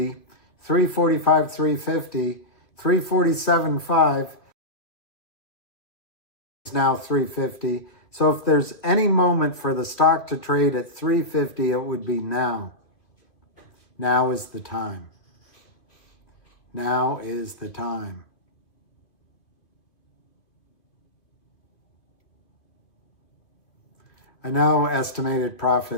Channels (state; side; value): late; right; 2.6 ms